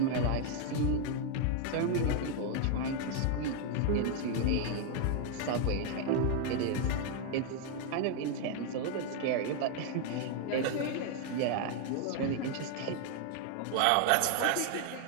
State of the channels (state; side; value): different; both; correlation 0.00